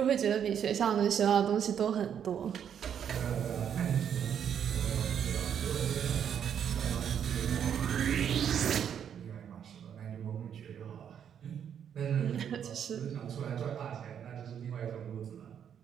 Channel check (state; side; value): quieter; left; 8.6 dB